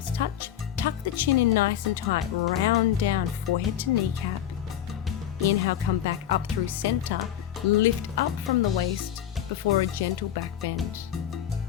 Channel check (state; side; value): quieter; right; 10.6 dB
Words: touch. Tuck the chin in nice and tight, round down, forehead to kneecap. Inhale, come back up through center, lift up from the waist before a gentle back bend.